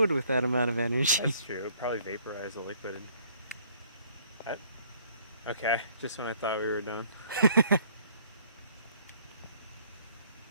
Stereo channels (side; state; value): both; inverted; correlation -0.61